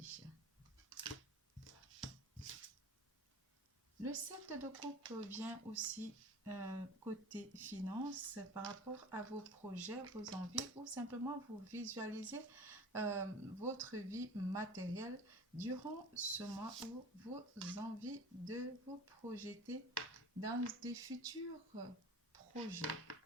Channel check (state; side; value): normal; both; correlation 0.39